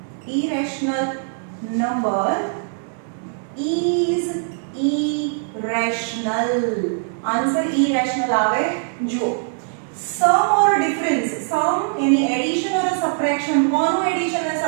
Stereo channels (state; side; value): silent; left; digital silence